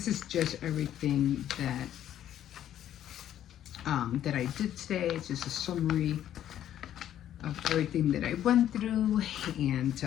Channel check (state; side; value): quieter; right; 11.2 dB